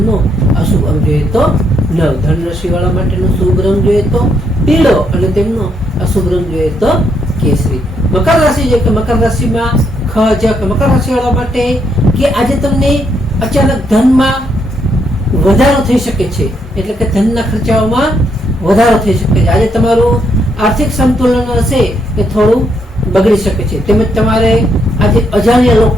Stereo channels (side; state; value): both; normal; correlation 0.75